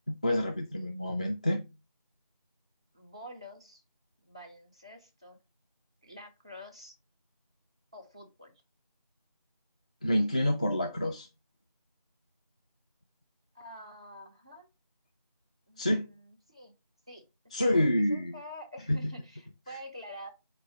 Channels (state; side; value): inverted; both; correlation -0.91